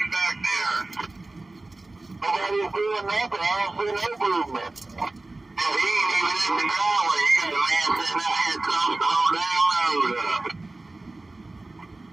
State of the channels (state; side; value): quieter; left; 3.0 dB